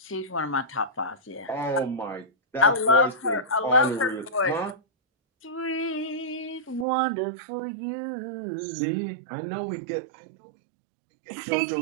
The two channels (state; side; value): drops out; left; at 6.9 s